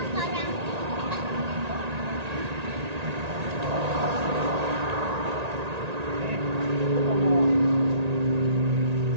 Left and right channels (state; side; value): late; left; 1.9 ms